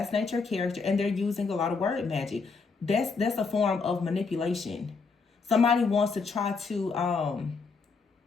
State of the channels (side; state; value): right; quieter; 4.6 dB